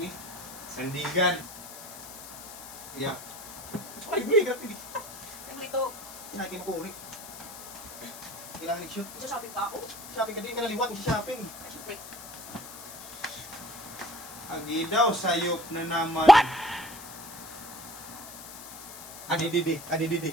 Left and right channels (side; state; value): left; noise; hiss, 13 dB below the sound